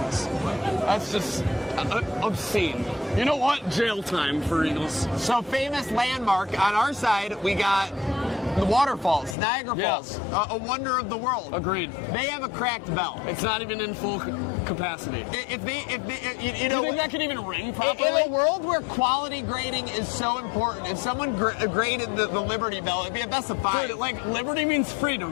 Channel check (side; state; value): right; drops out; at 9.3 s